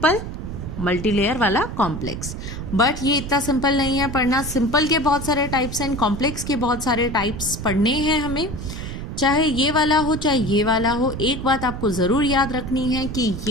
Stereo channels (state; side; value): noise; right; rumble, 7 dB below the sound